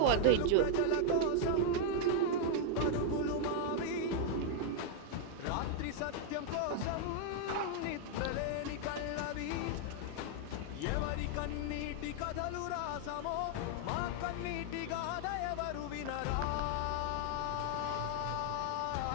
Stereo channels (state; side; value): different; both; correlation 0.00